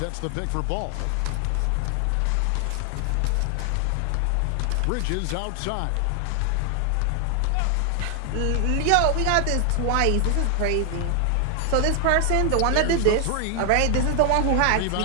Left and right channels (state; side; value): different; both; correlation 0.00